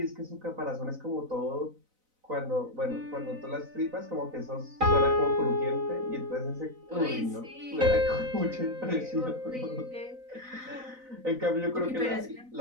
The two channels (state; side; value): late; left; 4.0 ms